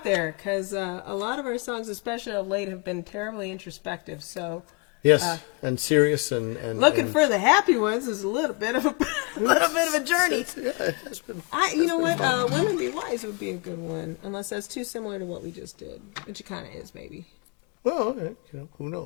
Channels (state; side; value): quieter; right; 31.6 dB